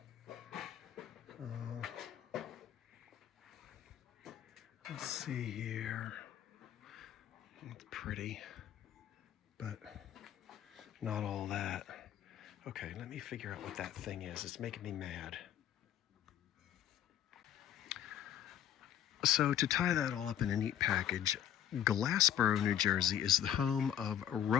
Let's see here. It's pretty, but not all that. Okay, let me figure out what that thing is. It's making me mad. So to tie that all up in a neat package, Glassboro, New Jersey is the home of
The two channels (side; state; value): right; quieter; 10.6 dB